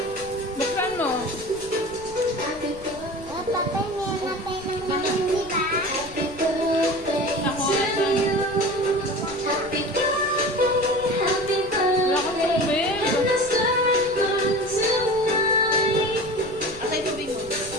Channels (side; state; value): left; noise; rumble, 18 dB below the sound